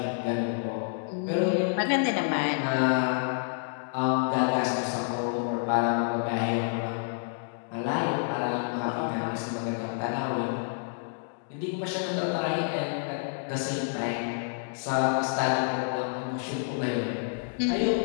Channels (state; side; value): silent; right; digital silence